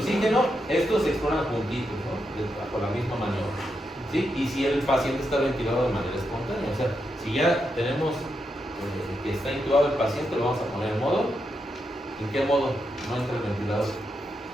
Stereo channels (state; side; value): normal; both; correlation 0.84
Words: estos se exploran juntitos, ¿no? Bajo la misma maniobra. ¿Sí? Y si el paciente está ventilado de manera espontánea, o sea, si ya tenemos que está intubado el paciente, lo vamos a poner en modo. ¿En qué modo? No entra el ventilador.